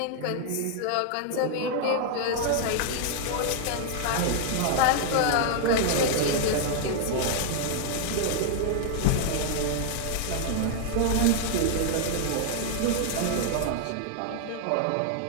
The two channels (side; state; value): both; different; correlation 0.00